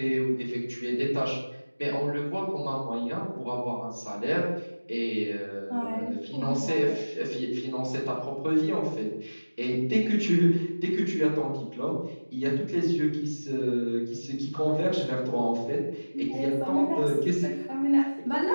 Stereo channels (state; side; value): inverted; both; correlation -1.00